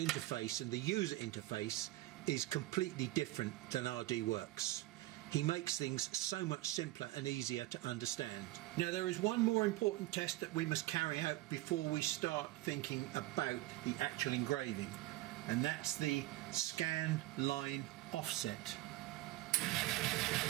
and the user interface is completely different than RDWorks. He makes things so much simpler and easier to understand. Now there is one more important test that we must carry out before we start thinking about the actual engraving, and that's the scan line offset.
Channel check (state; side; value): quieter; left; 17.6 dB